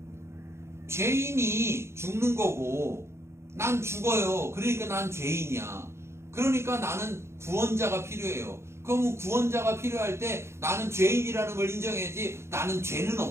죄인이 죽는 거고 난 죽어요. 그러니까 난 죄인이야. 그러니까 나는 구원자가 필요해요. 그럼 구원자가 필요할 때 나는 죄인이라는 걸 인정해야지. 나는 죄는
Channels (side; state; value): left; late; 0.13 ms